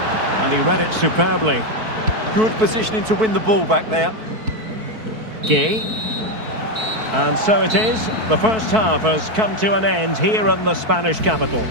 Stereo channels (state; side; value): late; left; 4.6 ms